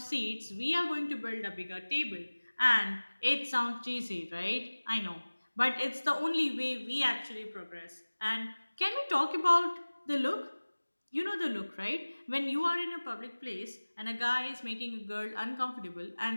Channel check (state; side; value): inverted; both; correlation -1.00